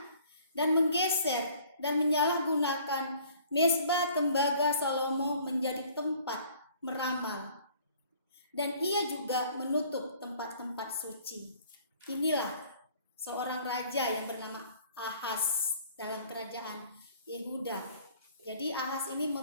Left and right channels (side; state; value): both; inverted; correlation -0.55